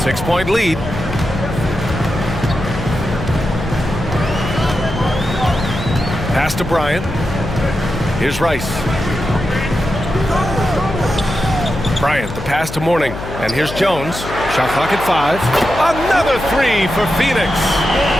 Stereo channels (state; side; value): noise; left; hum, 10 dB below the sound